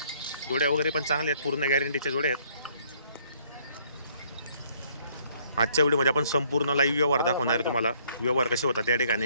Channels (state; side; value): inverted; both; correlation -0.64